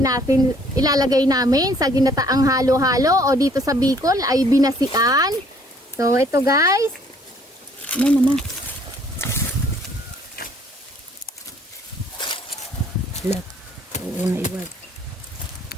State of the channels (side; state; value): both; normal; correlation 0.60